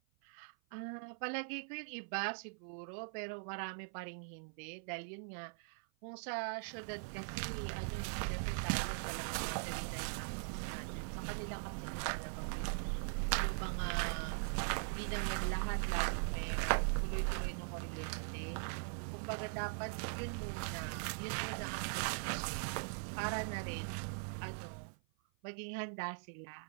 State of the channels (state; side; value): silent; left; 50 dB below the other